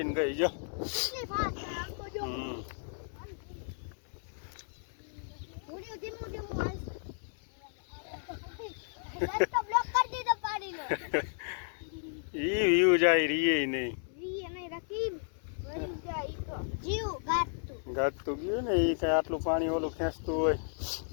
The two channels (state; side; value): silent; right; 55 dB below the other